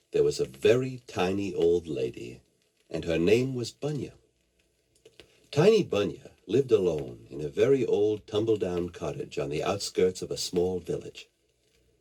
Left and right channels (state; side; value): identical; both; correlation 1.00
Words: there was a very tiny old lady, and her name was Bunya. Tiny Bunya lived alone in a very old tumble-down cottage on the outskirts of a small village.